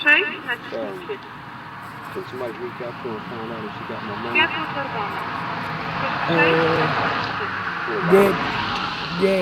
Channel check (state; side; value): identical; both; correlation 1.00